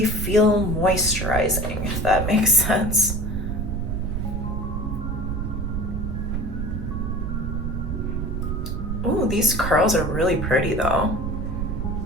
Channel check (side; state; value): right; noise; rumble, 2 dB below the sound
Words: feel moisturizing, if that makes sense. Ooh, these curls are really pretty though.